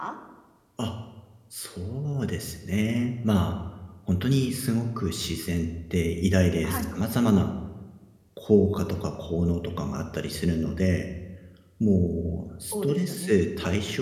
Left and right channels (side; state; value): both; identical; correlation 1.00